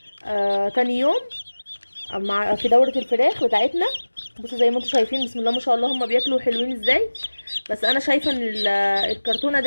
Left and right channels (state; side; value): inverted; both; correlation -1.00